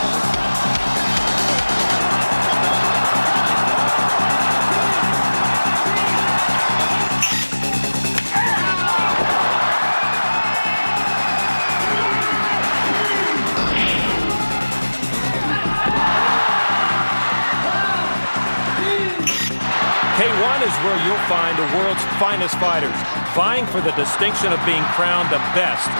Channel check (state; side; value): inverted; both; correlation -1.00